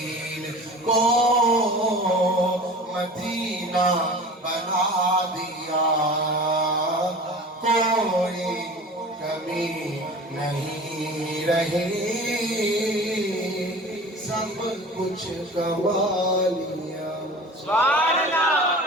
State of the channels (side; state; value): both; normal; correlation 0.39